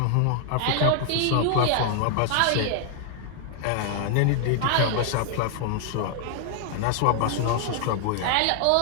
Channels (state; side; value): different; both; correlation 0.00